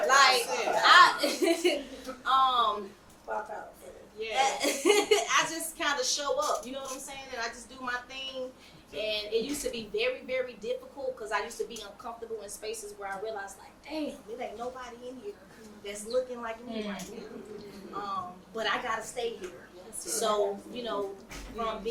saying? Like, Pop out. I just kind of show up. You know what I'm saying? And I just do my thing. And it used to be very, very difficult because I used to be uncomfortable in spaces where I realized, like, damn, there ain't nobody in here that's looking like me right now. But I gotta stay here. So, from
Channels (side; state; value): both; identical; correlation 1.00